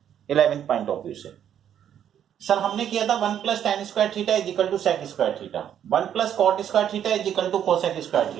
11th point of view से। सर हमने किया था 1 plus tan square theta is equal to sec square theta, 1 plus cot square theta is equal to cosec square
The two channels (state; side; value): quieter; left; 9.6 dB